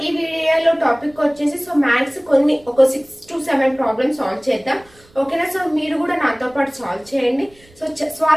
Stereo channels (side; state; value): right; noise; rumble, 28 dB below the sound